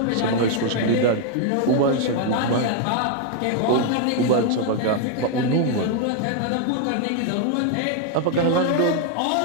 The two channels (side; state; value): both; different; correlation 0.00